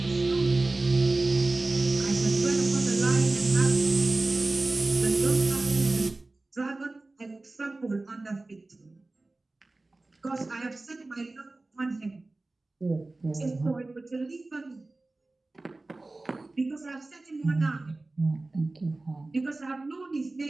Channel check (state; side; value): quieter; left; 3.1 dB